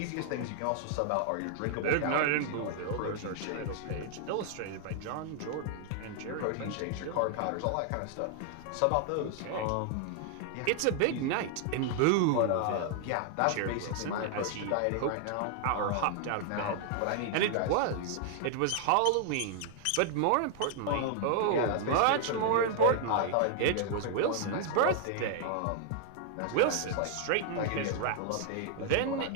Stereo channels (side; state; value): both; different; correlation 0.00